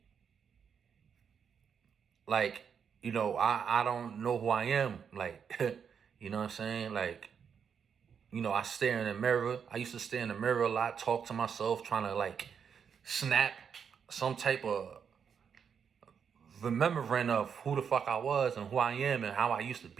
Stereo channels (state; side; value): quieter; left; 7.1 dB